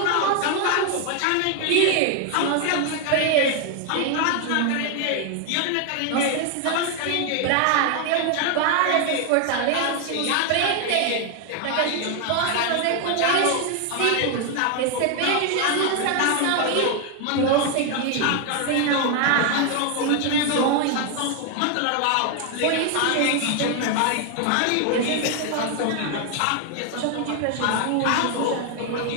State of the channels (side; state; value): both; different; correlation 0.01